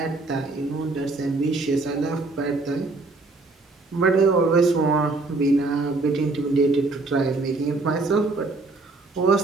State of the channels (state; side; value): quieter; left; 3.4 dB